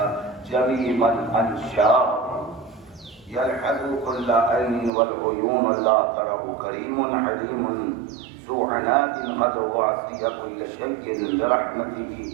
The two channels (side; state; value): left; drops out; at 4.9 s